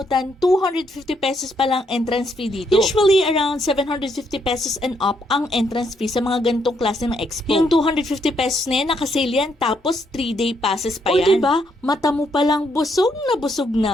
250 pesos pa lang entrance fee dito. Usually, around 750 pesos and up ang entrance fee sa mga ganitong klase ng expo. Yung 250 pesos na yan, nakasale yan, tapos 3-day passes pa yan. O diba, mata mo palang busog na busog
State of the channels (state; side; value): normal; both; correlation 0.74